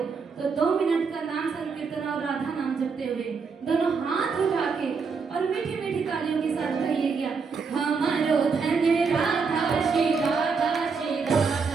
2 मिनट का नाम संकीर्तन और राधा नाम जपते हुए दोनों हाथ उठा के और मीठी मीठी तालियों के साथ कहिएगा, हमारो धन राधा श्री राधा श्री राधा,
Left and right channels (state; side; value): quieter; left; 5.2 dB